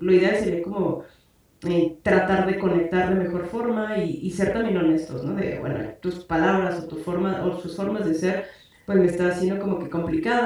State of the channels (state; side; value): identical; both; correlation 1.00